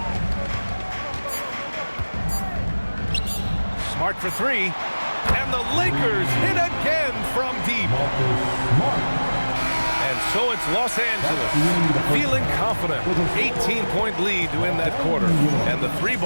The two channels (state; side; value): inverted; both; correlation -1.00